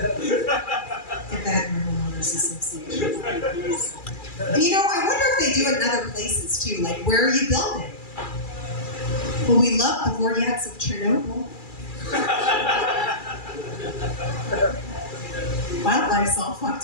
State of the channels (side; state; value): right; late; 2.4 ms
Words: that in the homeowners association. And you know, I wonder if they do it in other places too. Like, where are you building? Well, we love the Vortex of Chernobyl. Wildlife's all fucked